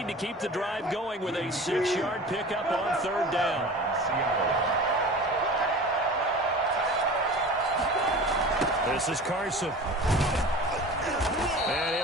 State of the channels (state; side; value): normal; both; correlation 0.37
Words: to keep the drive going with a 6-yard pickup on third down. This is Carson. And